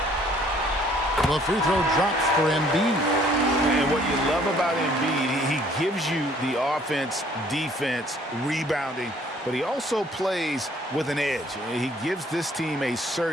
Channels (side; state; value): both; normal; correlation 0.60